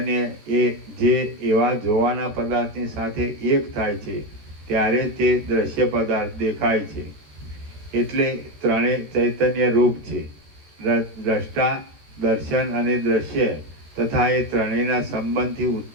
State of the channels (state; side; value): late; left; 13 ms